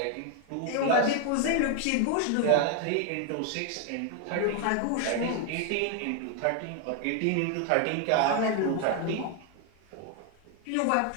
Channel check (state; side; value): different; both; correlation 0.01